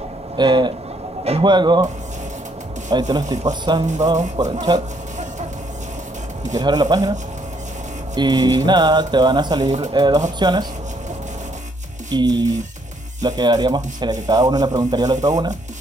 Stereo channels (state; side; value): normal; both; correlation 0.70